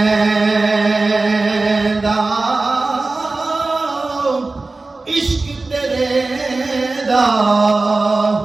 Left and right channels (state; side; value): quieter; left; 3.4 dB